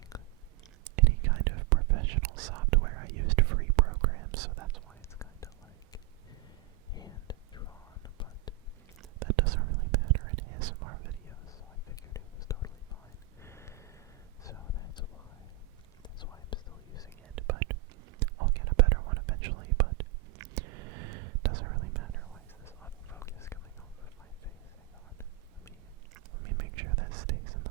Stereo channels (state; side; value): quieter; left; 14.3 dB